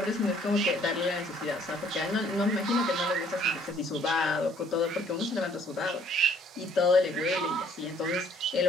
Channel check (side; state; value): both; normal; correlation 0.61